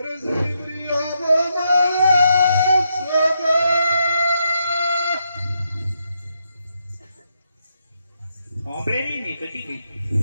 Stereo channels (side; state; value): both; inverted; correlation -0.80